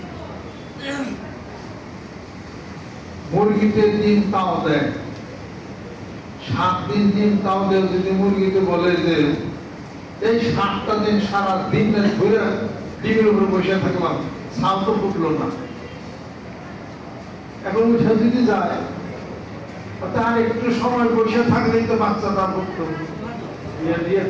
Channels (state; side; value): identical; both; correlation 1.00